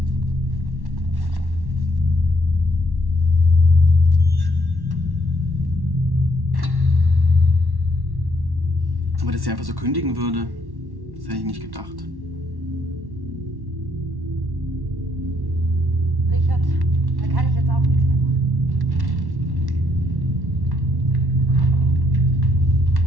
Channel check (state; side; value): late; left; 1.1 ms